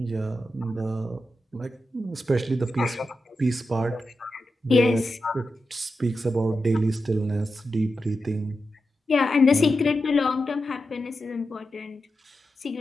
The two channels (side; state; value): both; normal; correlation 0.89